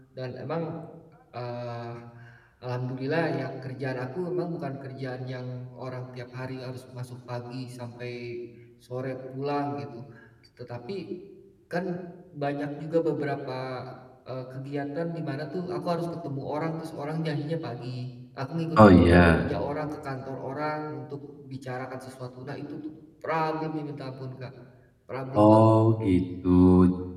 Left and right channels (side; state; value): both; identical; correlation 1.00